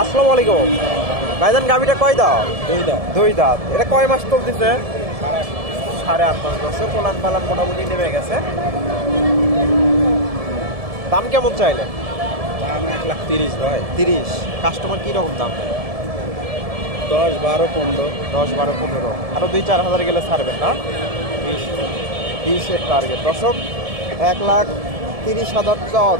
আসসালামু আলাইকুম ভাইজান, গাভীটা কয় দাঁত? 2 দাঁত। 2 দাঁত। এটা কয় মাস চলতেছে? 8.5 মাস বয়সে, পোলান পালান মোটামুটি নেমে গেছে। দাম কেমন চাইলে? দাম 1,30,000 ভাই। 30। কাস্টমার কি রকম দাম দেয়? 10, 12, 15। 10, 12, 15। আরো 2-4 হাজার গেলে ছাড়বেন না? 20-এর টার্গেট। দর্শক 1,30,000 চাওয়া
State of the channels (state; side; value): late; left; 1.7 ms